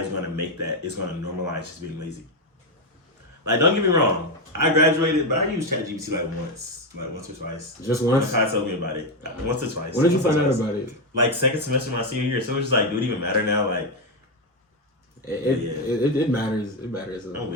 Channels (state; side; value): normal; both; correlation 0.07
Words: gonna make that, it's gonna normalize just being lazy. Like, don't get me wrong, I graduated, but I used ChatGPT like once or twice. Just once? My told me about it. Once or twice. When did you find out about it? Like second semester of my senior year. So it was just like, do it even matter now? Like, It matters. It matters.